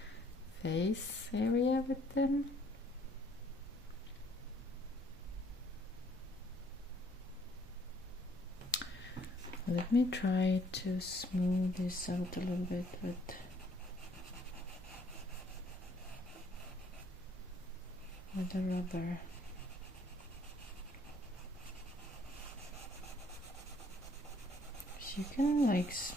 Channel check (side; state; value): both; normal; correlation 0.63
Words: face area with them. Let me try to smooth this out a little bit with the rubber. So you can like